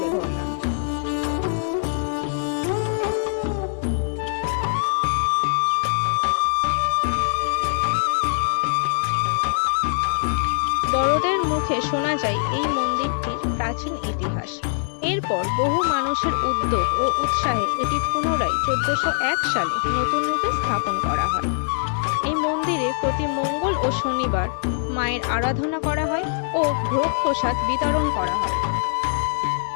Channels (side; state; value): right; silent; 64 dB below the other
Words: ধরলাম। বড়দের মুখে শোনা যায় এই মন্দিরটির প্রাচীন ইতিহাস। এরপর বহু মানুষের উদ্যোগ ও উৎসাহে এটি পুনরায় 1401 সালে নতুন রূপে স্থাপন করা হয়। এই মন্দিরে প্রতি মঙ্গল ও শনিবার মায়ের আরাধনা করা হয় ও ভোগ প্রসাদ বিতরণ করা হয়।